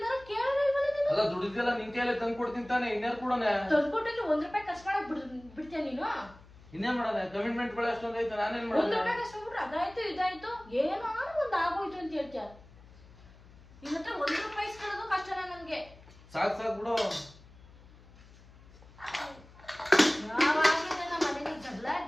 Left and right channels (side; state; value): left; noise; hum, 23 dB below the sound